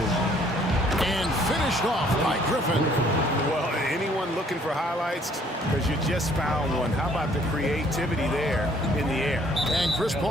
And finished off by Griffin. Well, anyone looking for highlights? Because you just found one. How about the creativity there in the air? And Chris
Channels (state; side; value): normal; both; correlation 0.61